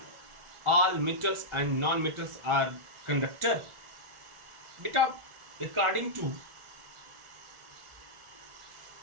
all metals and non-metals are conductor? Beta, according to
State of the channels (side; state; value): left; late; 1.4 ms